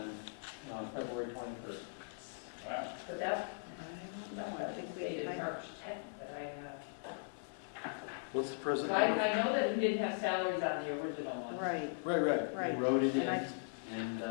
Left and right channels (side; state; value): right; silent; 52 dB below the other